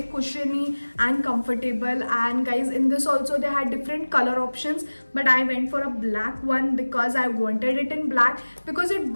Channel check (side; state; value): both; inverted; correlation -1.00